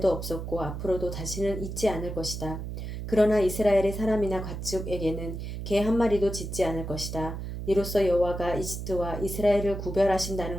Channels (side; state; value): right; noise; hum, 6 dB below the sound